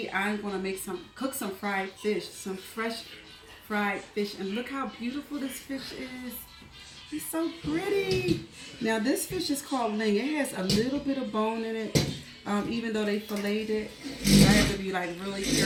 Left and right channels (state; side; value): identical; both; correlation 1.00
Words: I'm gonna cook some fried fish, some fresh fried fish, and look how beautiful this fish is. It's so pretty. Now this fish is called Ling. It has a little bit of bone in it, even though they filleted it. I have to be like really